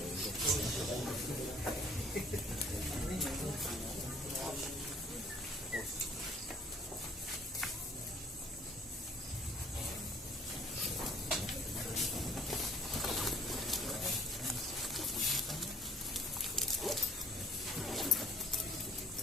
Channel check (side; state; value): both; normal; correlation 0.56